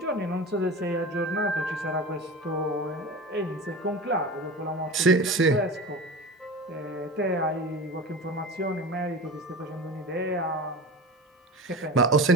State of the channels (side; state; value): both; normal; correlation 0.30